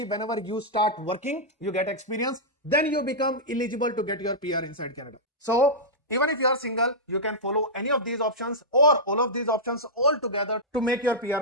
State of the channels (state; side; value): normal; both; correlation -0.11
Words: whenever you start working, you get experience, then you become eligible to get your PR inside Canada. So even if you are single, you can follow any of these options or all of these options all together to make your PR